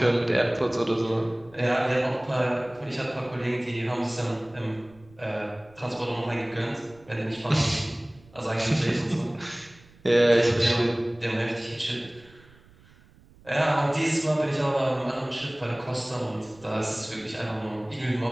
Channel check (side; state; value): right; noise; rumble, 26 dB below the sound